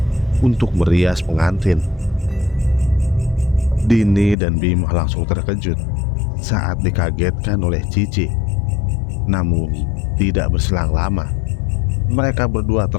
untuk merias pengantin. Dini dan Bima langsung terkejut saat dikagetkan oleh Cici. Namun tidak berselang lama, mereka berdua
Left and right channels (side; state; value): right; drops out; at 4.4 s